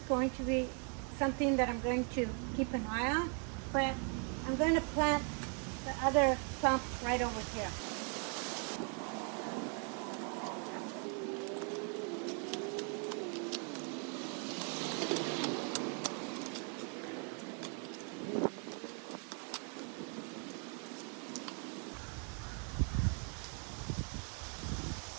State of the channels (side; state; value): left; quieter; 39.9 dB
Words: going to be something that I'm going to keep an eye on, but I'm going to plant the other clump right over here.